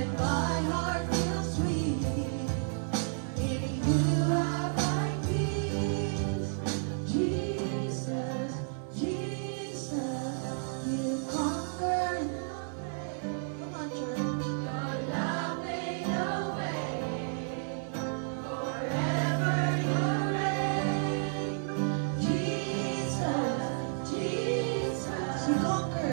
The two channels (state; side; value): silent; left; 57 dB below the other